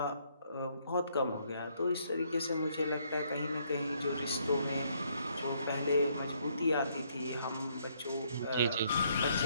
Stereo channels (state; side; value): inverted; both; correlation -0.70